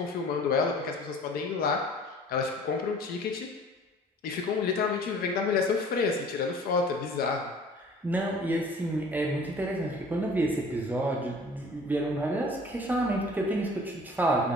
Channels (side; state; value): both; normal; correlation 0.49